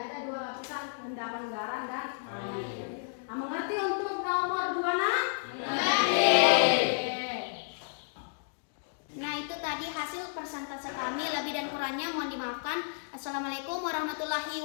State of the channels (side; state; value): right; silent; digital silence